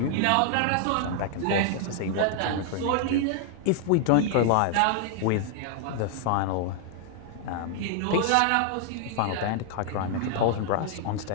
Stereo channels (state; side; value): different; both; correlation 0.00